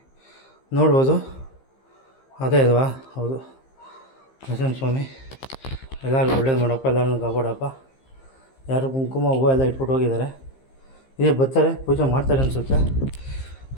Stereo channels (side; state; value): right; late; 15 ms